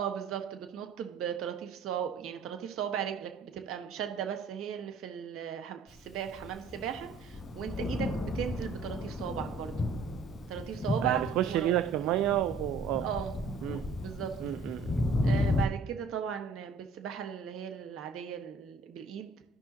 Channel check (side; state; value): left; quieter; 4.1 dB